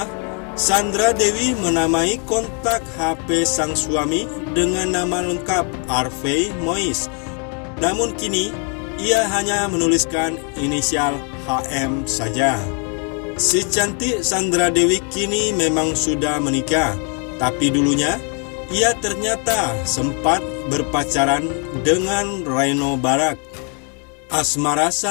Sandra Dewi menamai kontak HP sang suami dengan nama lengkap Harvey Mois. Namun kini, ia hanya menuliskan inisial HM saja. Si cantik Sandra Dewi kini memang sudah menikah, tapi dulunya ia ternyata sempat berpacaran dengan Reno Barak. Asmara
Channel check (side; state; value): right; quieter; 39.4 dB